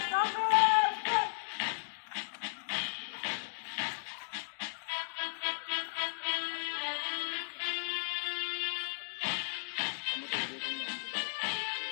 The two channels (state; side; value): silent; right; digital silence